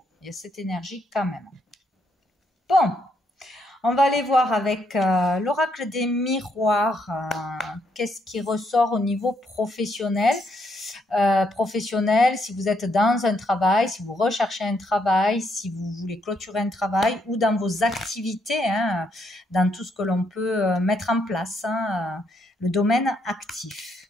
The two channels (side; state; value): both; normal; correlation 0.75